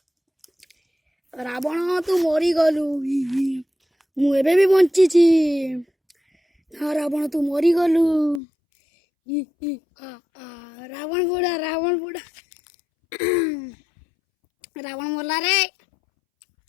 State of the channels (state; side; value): drops out; right; at 8.4 s